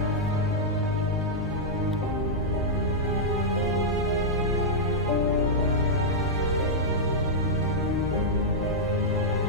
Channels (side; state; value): both; normal; correlation -0.07